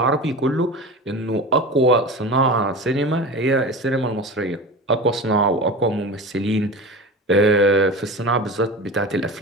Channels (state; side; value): normal; both; correlation 0.30